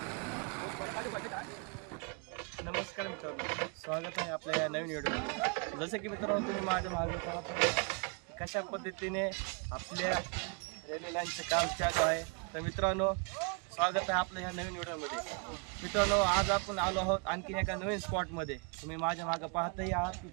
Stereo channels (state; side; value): quieter; left; 35.4 dB